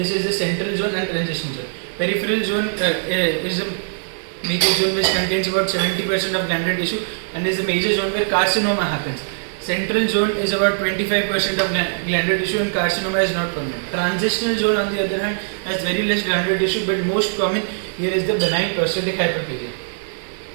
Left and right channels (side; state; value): left; silent; digital silence